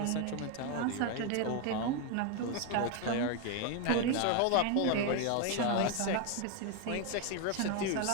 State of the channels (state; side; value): different; both; correlation 0.01